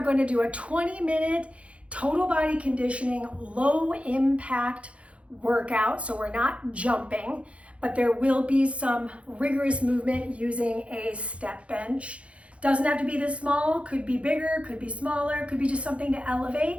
going to do a 20-minute total body conditioning, low impact workout. So we're not jumping, but there will be some rigorous movement using a step bench. Doesn't have to be this small, could be bigger, could be smaller, could be just something to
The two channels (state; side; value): late; left; 0.062 ms